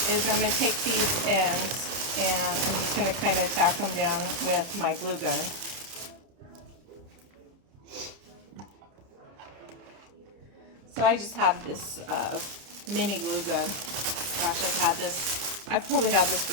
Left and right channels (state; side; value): late; left; 30 ms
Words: is I'm gonna take these ends and I'm just gonna kind of tack them down with my glue gun. So I just have this mini glue gun. Gosh, I've probably had this